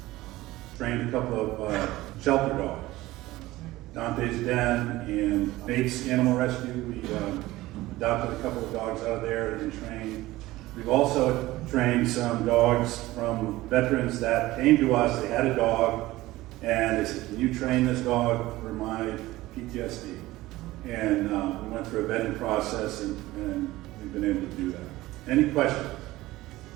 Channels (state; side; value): quieter; left; 17.8 dB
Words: trained a couple of shelter dogs. Dante's Den and Bates Animal Rescue. We adopted a couple of dogs out of there and trained. We've also trained some dogs from veterans that came to us. They had a dog and they said, "Can you train this dog for my PTSD?" And we went through a vetting process and we've been able to do that. Any questions?